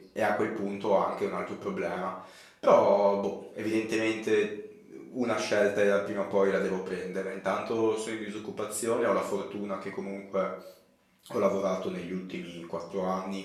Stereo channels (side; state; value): both; identical; correlation 1.00